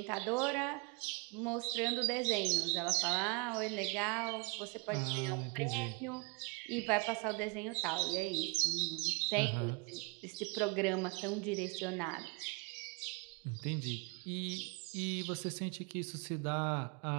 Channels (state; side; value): quieter; left; 31.2 dB